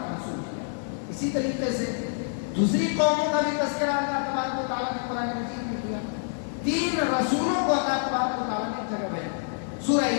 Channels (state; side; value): silent; right; digital silence